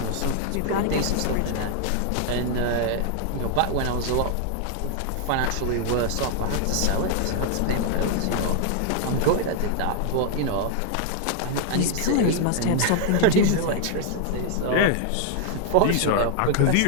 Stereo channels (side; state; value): both; different; correlation 0.00